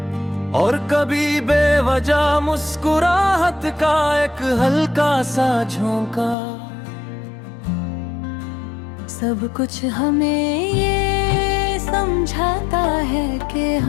और कभी बेवजह मुस्कुराहट का एक हल्का सा झोंका। सब कुछ हमें ये समझाता है कि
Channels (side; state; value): right; drops out; at 6.4 s